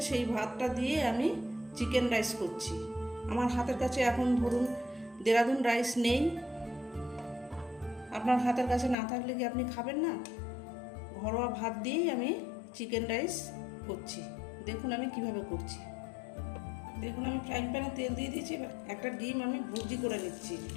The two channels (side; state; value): right; drops out; at 9.0 s